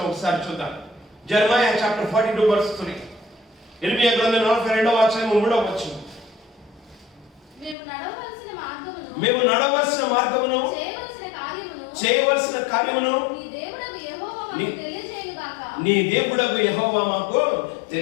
ఒకసారి చూద్దాం. జెరమయా చాప్టర్ 42:3. ఇర్మియా గ్రంథం 42వ అధ్యాయము 3వ వచనం. మేము నడవలసిన మార్గమును చేయవలసిన కార్యమును నీ దేవుడగు యెహోవా మాకు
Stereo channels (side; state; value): right; drops out; at 7.8 s